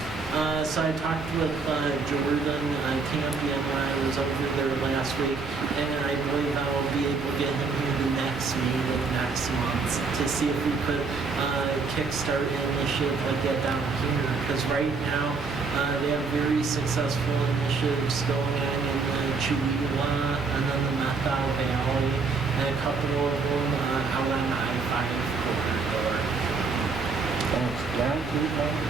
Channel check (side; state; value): left; quieter; 4.6 dB